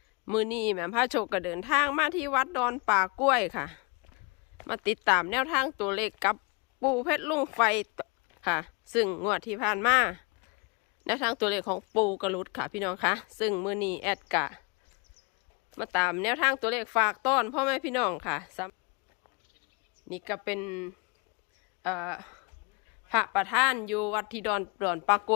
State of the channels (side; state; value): right; quieter; 31.0 dB